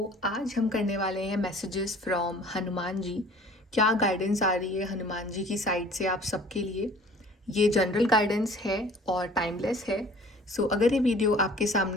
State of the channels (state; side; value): normal; both; correlation 0.50